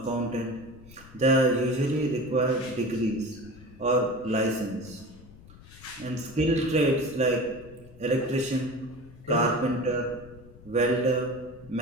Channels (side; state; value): left; noise; rumble, 21 dB below the sound